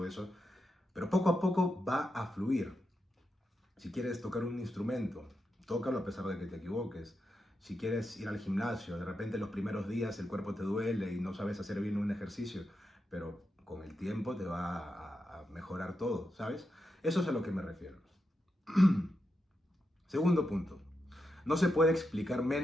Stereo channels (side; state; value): both; normal; correlation 0.86